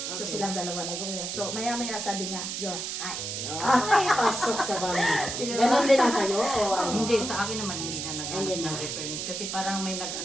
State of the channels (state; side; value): noise; right; hiss, 4 dB below the sound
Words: So, Okay. silang dalawa nag-usap. So, maya-maya sabi niya, you're high. Ay, pasok sa bangin. Diba? Ganon din ang sa'yo? O ano? Hindi, sa akin naman hindi na Hindi na. ng reference. Kasi parang may